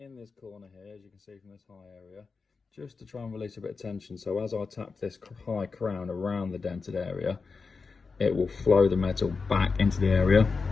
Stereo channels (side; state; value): right; quieter; 4.7 dB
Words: in this corner here, as you can see from this high area, just to try and release a bit of tension. So as I tap this high crown around the dented area, it will flow the metal back into the area.